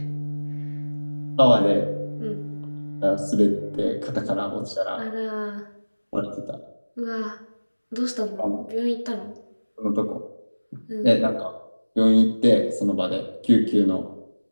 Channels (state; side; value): inverted; both; correlation -1.00